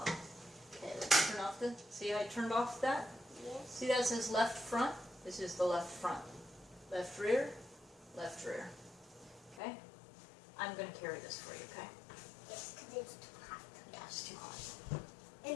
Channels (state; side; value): drops out; right; at 9.6 s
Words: Okay, let's turn off the, see how I turned off that? Yes. See that says left front? This is the left front. Left rear, left rear. Okay? I'm going to carry this for you, okay? Yes, because it's too hot. Yeah, it's too hot.